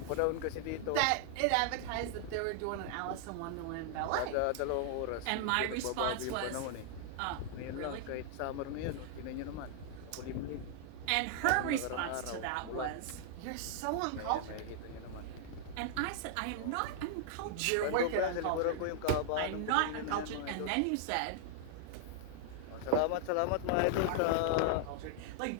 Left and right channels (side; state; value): both; different; correlation -0.01